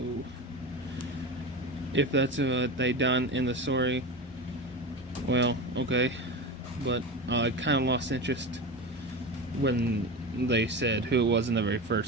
if that's what they done in the story, well, okay. But I kind of lost interest when they said who it was in the very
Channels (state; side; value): normal; both; correlation 0.25